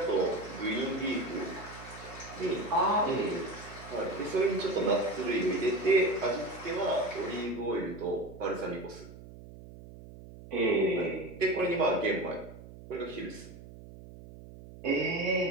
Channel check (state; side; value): noise; right; hum, 16 dB below the sound